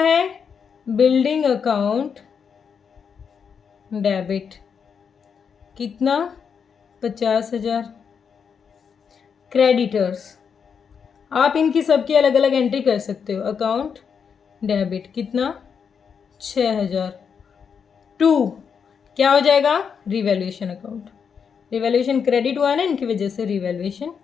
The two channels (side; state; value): right; quieter; 6.7 dB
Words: है, बिल्डिंग अकाउंट डेबिट, कितना, 50,000। क्रेडिटर्स, आप इनकी सबकी अलग अलग एंट्री कर सकते हो, अकाउंट डेबिट कितना, 6,000। टू क्या हो जाएगा, रिवैल्यूएशन अकाउंट, रिवैल्यूएशन क्रेडिट हुआ है ना इनकी वजह से, रिवैल्यूएशन